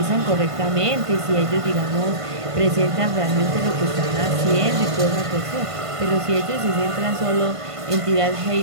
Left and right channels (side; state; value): left; late; 1.5 ms